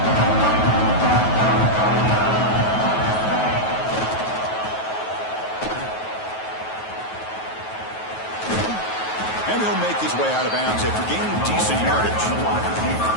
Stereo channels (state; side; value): late; right; 9.3 ms